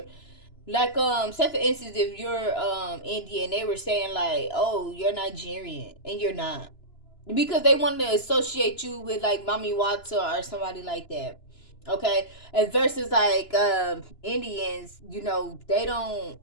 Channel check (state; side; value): late; right; 2.9 ms